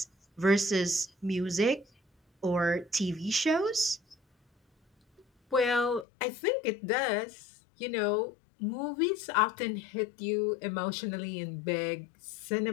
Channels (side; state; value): right; drops out; at 6.1 s